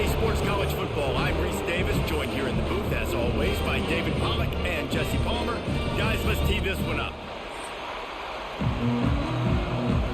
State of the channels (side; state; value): both; identical; correlation 1.00